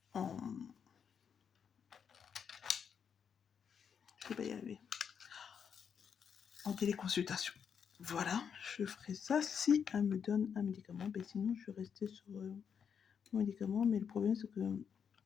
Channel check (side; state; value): right; quieter; 7.2 dB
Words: je vais pas y arriver. En téléconsultation. Voilà, je ferai ça si elle me donne un médicament. Ben, sinon, je vais rester sur mon médicament. Mais le problème, c'est que